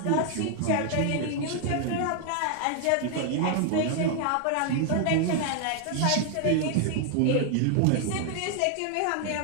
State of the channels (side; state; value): both; different; correlation 0.00